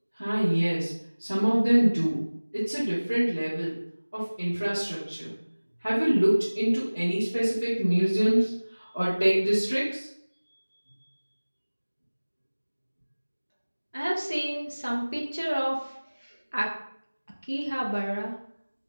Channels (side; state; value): both; inverted; correlation -1.00